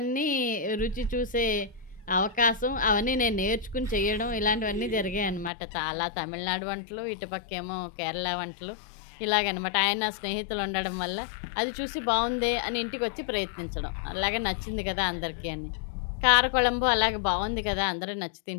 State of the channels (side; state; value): right; drops out; at 5.5 s